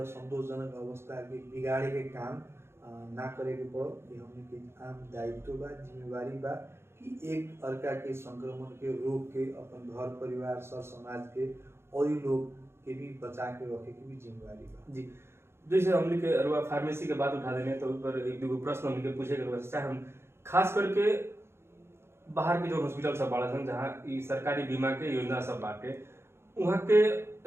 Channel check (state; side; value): late; left; 0.12 ms